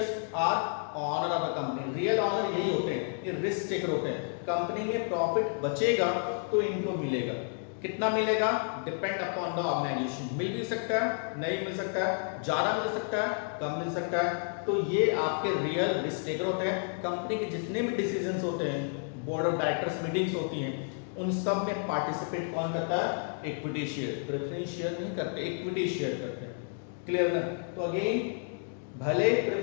are owner of the company, real owner यही होते हैं, ये रिस्क टेकर होते हैं। कंपनी में प्रॉफिट बचेगा तो इनको मिलेगा, कितना मिलेगा डिपेंड अपॉन द ऑर्गेनाइजेशन, मिल भी सकता है, नहीं मिल सकता है, ज्यादा मिल सकता है, कम मिल सकता है। तो ये आपके रियल रिस्क टेकर होते हैं। कंपनी के जितने भी डिसीजंस होते हैं, बोर्ड ऑफ डायरेक्टर्स मीटिंग्स होती हैं, उन सब में पार्टिसिपेट कौन करता है, इक्विटी शेयर। प्रेफरेंस शेयर नहीं करते, इक्विटी शेयर करते हैं। क्लियर ना। तो अगेन भले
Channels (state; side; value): silent; right; 57 dB below the other